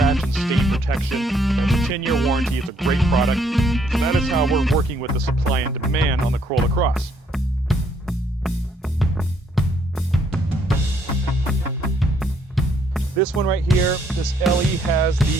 and stain protection. It's a 10-year warranty. It's a great product. And that is how we're working with the supply and demand on the Corolla Cross. This one right here, this LE has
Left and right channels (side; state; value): both; normal; correlation 0.68